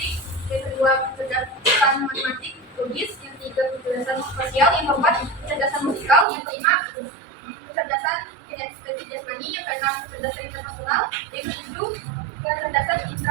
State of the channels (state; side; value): drops out; left; at 6.2 s